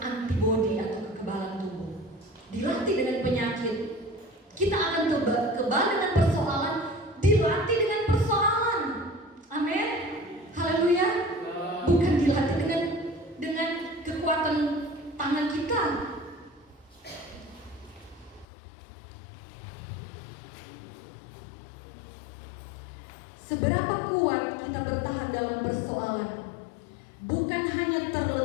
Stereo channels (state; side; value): drops out; right; at 18.4 s